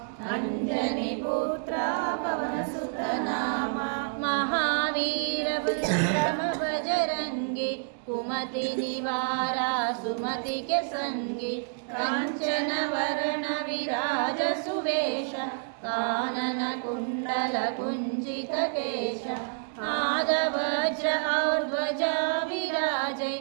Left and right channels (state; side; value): silent; left; digital silence